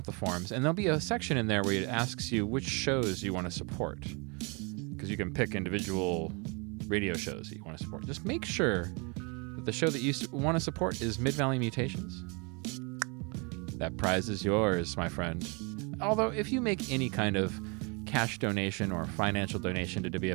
the forms, and there'll be a section in there where it asks you which shows you want to support. Because you can pick individual radio shows that you want to support. Just make sure that the show that you want to support is Mid-Valley Mutations. That prize is yours, my friend. Although, if you make any kind of cash donation or financial donation to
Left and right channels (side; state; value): left; quieter; 31.8 dB